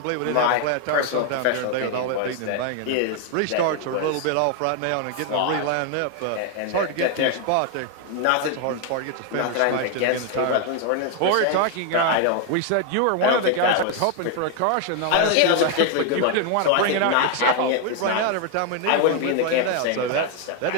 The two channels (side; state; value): both; different; correlation 0.01